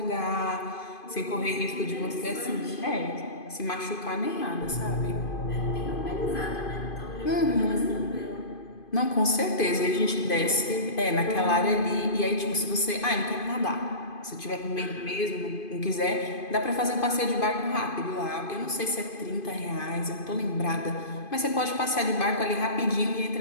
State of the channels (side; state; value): right; late; 2.5 ms